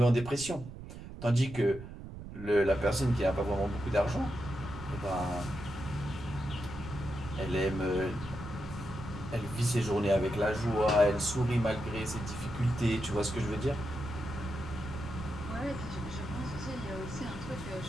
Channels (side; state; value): right; noise; rumble, 11 dB below the sound